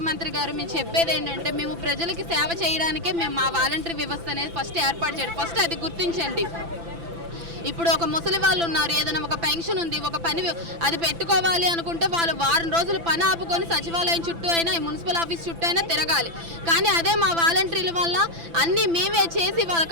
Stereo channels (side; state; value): left; late; 5.9 ms